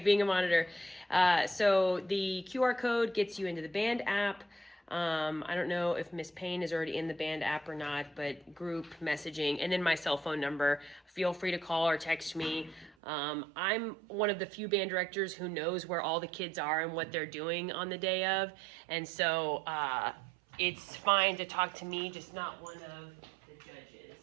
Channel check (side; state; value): left; drops out; at 13.0 s